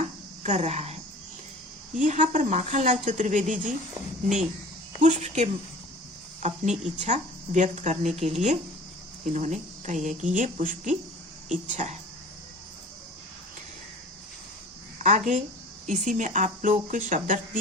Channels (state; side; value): normal; both; correlation 0.43